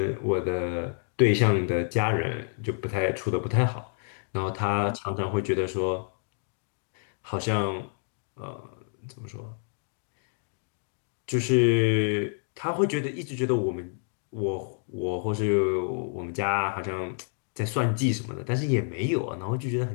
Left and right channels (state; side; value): silent; right; 59 dB below the other